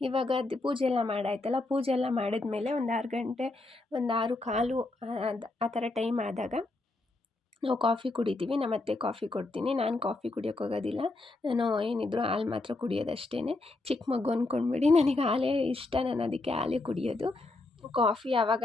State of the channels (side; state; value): right; quieter; 3.1 dB